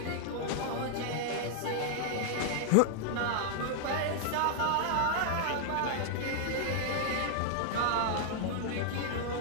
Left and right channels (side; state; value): both; different; correlation -0.01